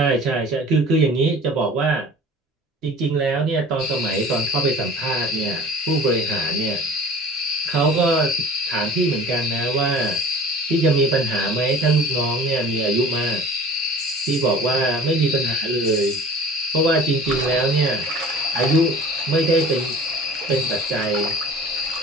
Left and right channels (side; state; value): both; normal; correlation 0.43